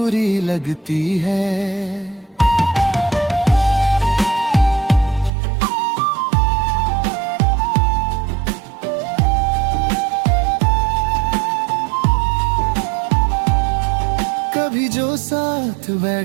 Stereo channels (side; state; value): left; drops out; at 5.3 s